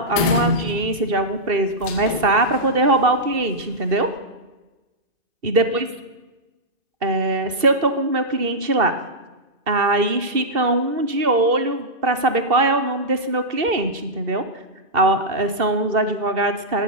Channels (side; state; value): left; late; 2.7 ms